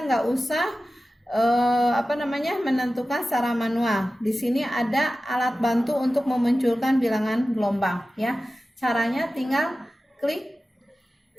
usah menentukan secara manual. Di sini ada alat bantu untuk memunculkan bilangan gelombang, ya. Caranya tinggal klik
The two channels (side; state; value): both; normal; correlation 0.95